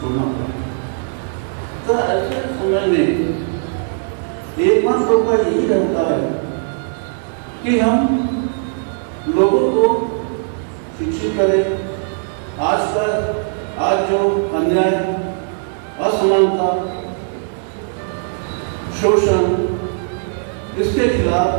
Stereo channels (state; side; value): silent; left; digital silence